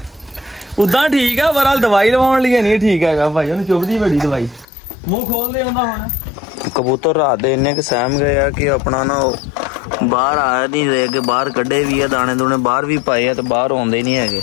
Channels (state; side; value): drops out; right; at 4.7 s